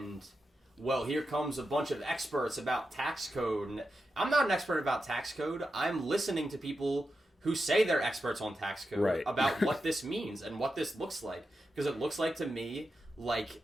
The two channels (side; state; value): both; normal; correlation 0.89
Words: well, here comes a bunch of experts about tax code. And I'm not an expert about tax code. I'm listening to people who say they're experts on tax code about what this means and what this looks like. Because it looks like to me like